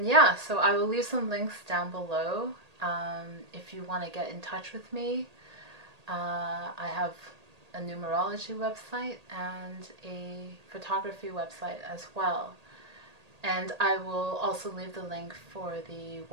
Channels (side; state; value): left; late; 1.8 ms